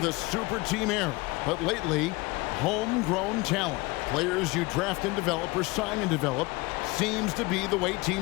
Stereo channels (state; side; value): quieter; right; 23.6 dB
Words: the super team era. But lately, homegrown talent. Players you draft and develop or sign and develop seems to be the way